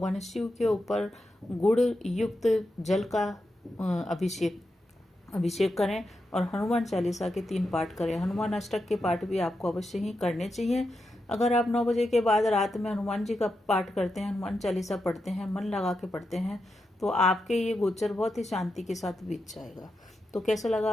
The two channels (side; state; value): both; normal; correlation 0.87